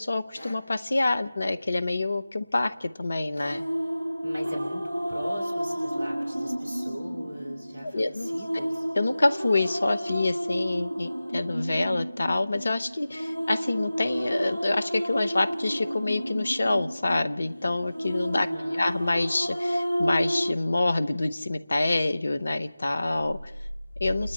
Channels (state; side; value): inverted; both; correlation -0.97